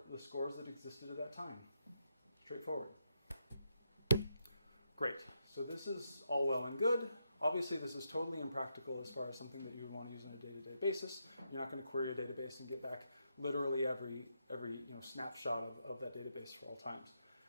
scores that existed at that time. Straightforward. Great. So this is all well and good. Obviously, this is totally impractical as far as something that you would want to use on a day-to-day basis. You're not going to query a database and get back literally every snapshot of that database for all times.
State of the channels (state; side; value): inverted; both; correlation -0.82